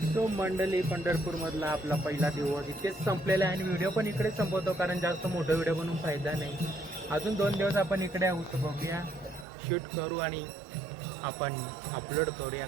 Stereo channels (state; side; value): drops out; left; at 9.5 s